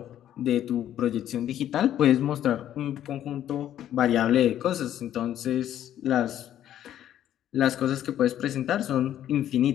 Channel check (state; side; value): quieter; right; 11.3 dB